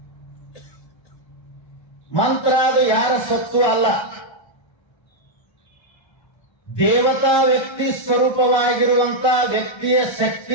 ಮಂತ್ರ ಅದು ಯಾರ ಸತ್ತು ಅಲ್ಲ, ದೇವತಾ ವ್ಯಕ್ತಿ ಸ್ವರೂಪವಾಗಿರುವಂತ ವ್ಯಕ್ತಿಯ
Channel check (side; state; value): right; late; 1.3 ms